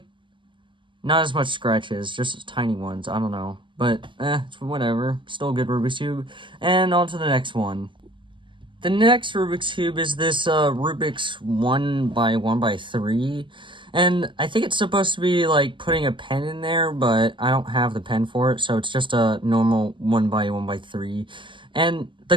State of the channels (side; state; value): left; late; 0.24 ms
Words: Not as much scratches, just tiny ones, I don't know. But, it's whatever. Still a good Rubik's Cube. And on to the next one. The next Rubik's Cube is this, Rubik's 1x1x3. And I think it's supposed to be, like, putting a pen in there, but I don't have the pen for it, so it's just a normal 1x1x3. And